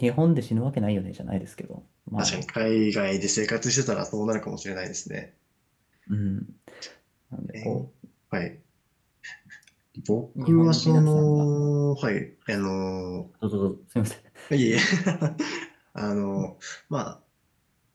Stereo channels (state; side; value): identical; both; correlation 1.00